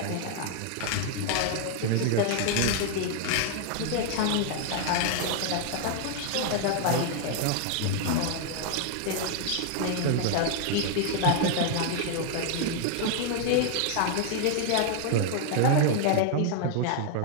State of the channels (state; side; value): different; both; correlation 0.00